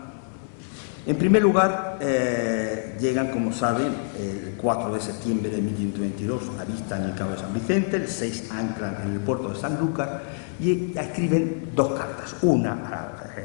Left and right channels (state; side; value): silent; right; 61 dB below the other